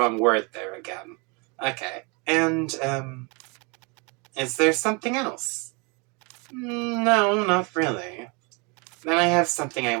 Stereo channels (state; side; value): quieter; left; 31.2 dB